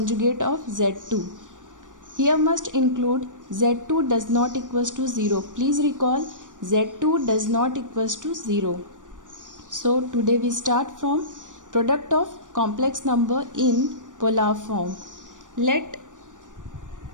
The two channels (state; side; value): late; left; 0.87 ms